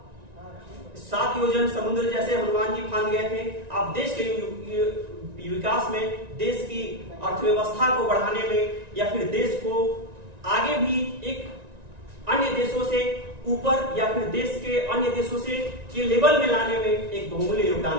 7 योजन समुद्र जैसे हनुमान जी फांद गए थे। आप देश के विकास में, देश की अर्थव्यवस्था को बढ़ाने में, या फिर देश को आगे भी एक अन्य देशों से ऊपर, या फिर देश के अन्य देशों से के लेवल में लाने में एक बहुमूल्य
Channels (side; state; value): left; late; 1.9 ms